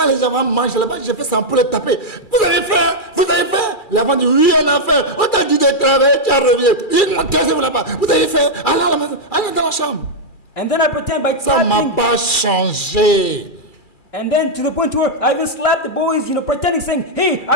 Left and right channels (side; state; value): right; late; 2.3 ms